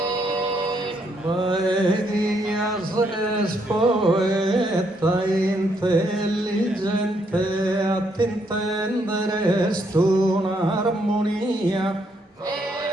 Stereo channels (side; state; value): both; normal; correlation 0.73